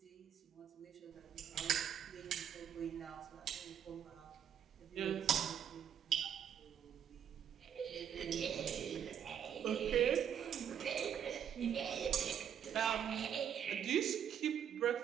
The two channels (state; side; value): quieter; left; 8.9 dB